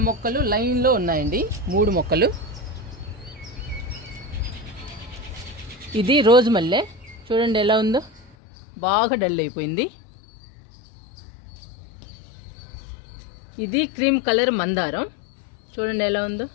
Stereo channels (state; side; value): drops out; right; at 8.3 s